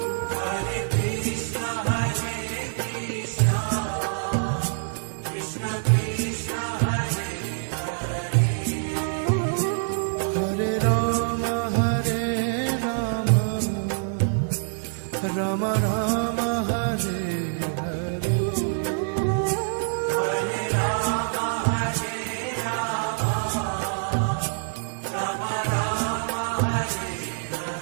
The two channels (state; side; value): silent; left; digital silence